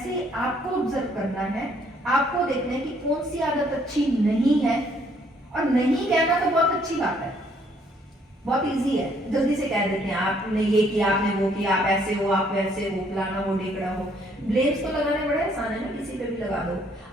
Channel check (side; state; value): both; normal; correlation 0.66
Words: आपको ऑब्जर्व करना है, आपको देखना है कि कौन सी आदत अच्छी नहीं है। और नहीं कहना तो बहुत अच्छी बात है, बहुत इजी है, जल्दी से कह देते हैं आपने ये किया, आपने वो किया, आप ऐसे हो, आप वैसे हो, फलाना हो, ढेकड़ा हो। ब्लेम्स तो लगाने बड़े आसान है ना, किसी पे भी लगा दो।